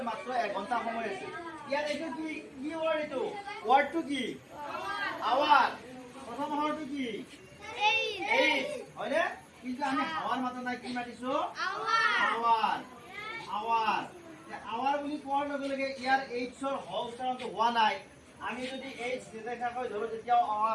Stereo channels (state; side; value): identical; both; correlation 1.00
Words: মাত্ৰ 1 ঘণ্টা সময় আছে। ইয়াত এইটো কি কি ওয়াৰ্ড এইটো? ওয়াৰ্ডটো কি? আৱাৰ। প্ৰথম আখৰটো কি? এইচ। হয়নে? কিন্তু আমি আৱাৰ মাতা নাই কি মাতিছো? আৱাৰ। আৱাৰ। আৱাৰ বুলি কোৱাৰ লগে লগে ইয়াৰ এইচৰ হ উচ্চাৰণটো হোৱা নাই। আমি যদি এইচ নিৰ্দেশাকৈ ধৰো তেতিয়াও